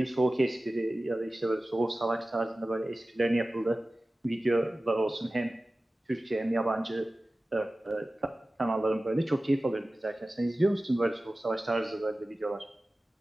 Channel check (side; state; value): both; normal; correlation 0.96